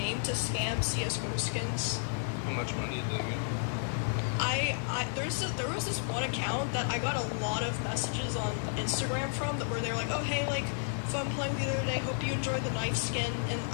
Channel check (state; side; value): silent; right; digital silence